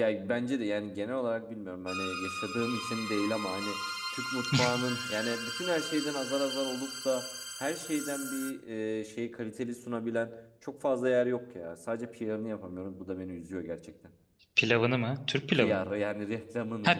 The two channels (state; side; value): identical; both; correlation 1.00